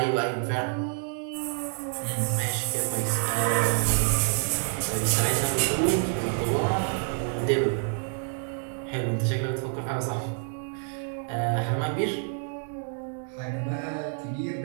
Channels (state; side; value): silent; left; 60 dB below the other